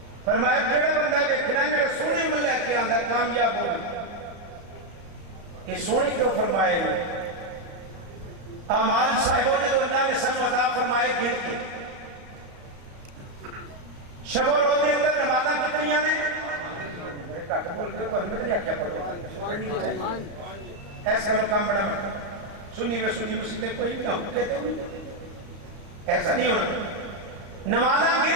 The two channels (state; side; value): late; left; 35 ms